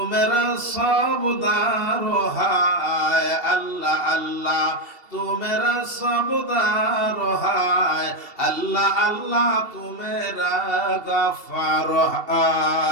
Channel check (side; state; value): left; late; 2.7 ms